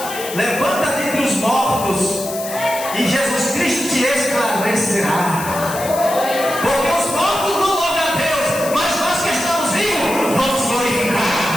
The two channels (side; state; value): left; noise; hiss, 10 dB below the sound